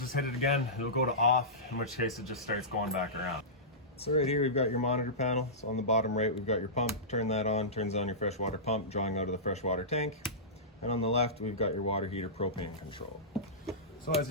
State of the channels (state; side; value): normal; both; correlation -0.19